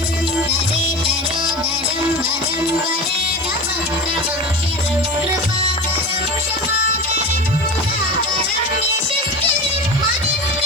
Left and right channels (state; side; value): noise; right; hiss, 24 dB below the sound